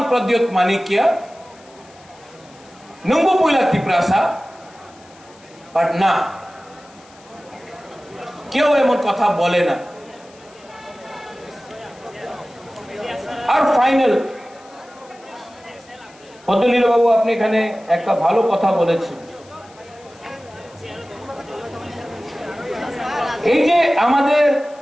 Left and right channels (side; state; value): left; noise; hiss, 26 dB below the sound